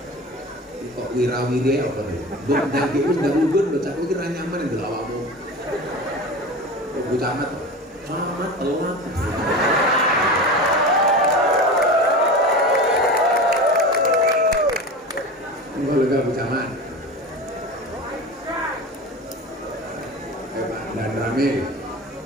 Kok wirawiri apa nih? Buk daging itu nggak ubun, bocah itu kira nyaman yang dilawamu. Bocah amat, amat telat. Enggak lega bocah amat. Pak dan Ramil,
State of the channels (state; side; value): normal; both; correlation 0.30